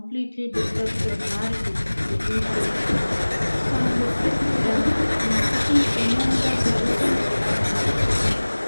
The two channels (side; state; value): both; inverted; correlation -1.00